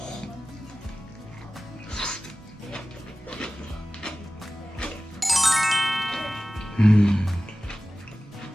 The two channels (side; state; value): both; normal; correlation 0.97